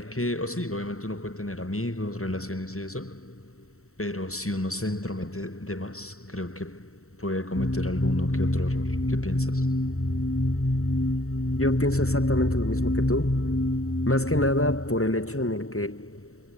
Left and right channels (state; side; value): late; right; 0.64 ms